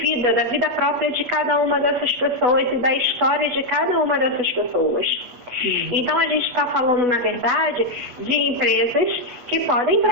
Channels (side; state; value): left; late; 8.2 ms